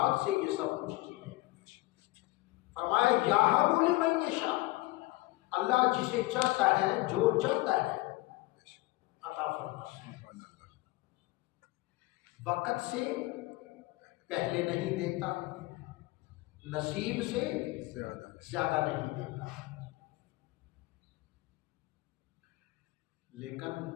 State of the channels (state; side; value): quieter; right; 20.5 dB